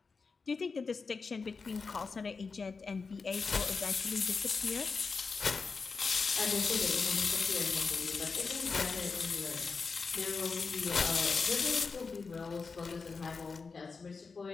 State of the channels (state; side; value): quieter; right; 4.7 dB